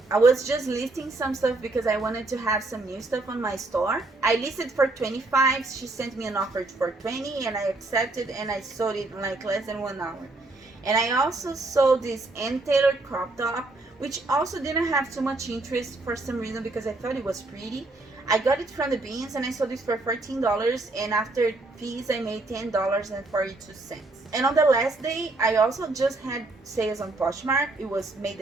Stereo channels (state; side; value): quieter; left; 3.1 dB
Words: I was just listing some stuff because I wanted to have some new stuff on my store. I listed for $25. She sent me an offer for $20, and I accepted, and I sold it in like less than 1 hour. And I also sold this Ann Taylor crop top, which also didn't have too much interest for some reason because I thought it was pretty. I got it from the bins, and I sold it for $14, and after fees I made $10.42. And on the last day, I also just had sales on Poshmark. It was May the